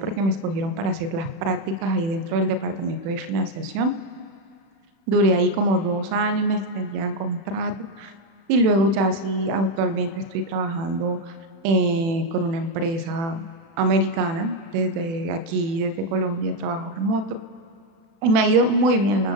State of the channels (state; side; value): late; left; 36 ms